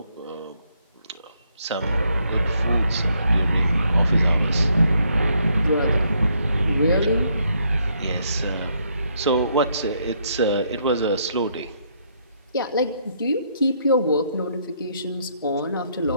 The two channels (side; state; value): both; inverted; correlation -0.73